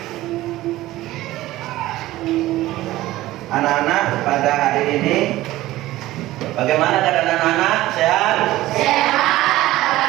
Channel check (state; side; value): quieter; left; 16.5 dB